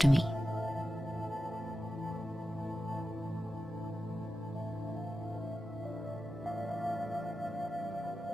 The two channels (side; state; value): both; normal; correlation 0.92